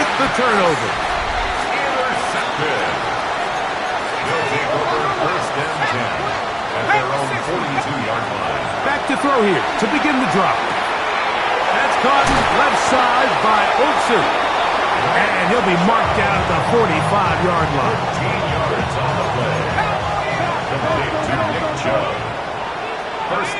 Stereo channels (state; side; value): identical; both; correlation 1.00